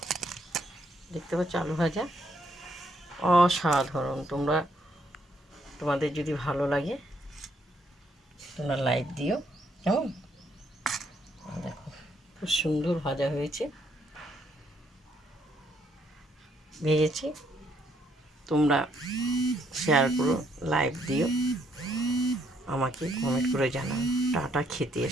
দেখতে পাচ্ছ? আলু ভাজা অসাধারণ। তোমাদের যদি ভালো লাগে তোমরা লাইক দিও। কেমন? দেখো, খুব সুন্দর ভাজা হয়েছে, ভেজেছি। তোমরা শেয়ার করো, লাইক দিও, আমাকে কমেন্ট করে জানাও। টাটা। খেতে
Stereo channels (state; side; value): normal; both; correlation 0.72